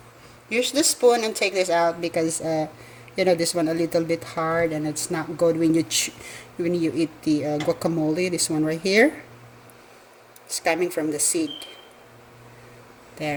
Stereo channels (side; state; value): both; identical; correlation 1.00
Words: Use the spoon and take this out because you know, this one a little bit hard and it's not good when you eat the guacamole. This one right here, it's coming from the seed.